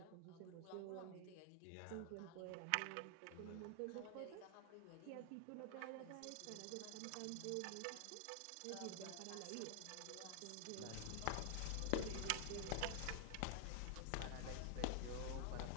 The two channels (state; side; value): different; both; correlation 0.00